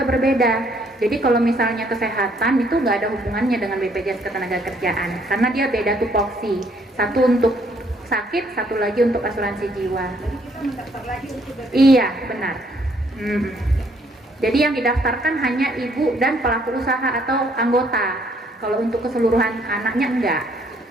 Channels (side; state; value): both; normal; correlation 0.66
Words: berbeda. Jadi kalau misalnya kesehatan itu nggak ada hubungannya dengan BPJS Ketenagakerjaan karena dia beda tupoksi. Satu untuk sakit, satu lagi untuk asuransi jiwa. Iya, benar. Jadi yang didaftarkan hanya ibu dan pelaku usaha atau anggota. Kalau untuk keseluruhan anaknya enggak.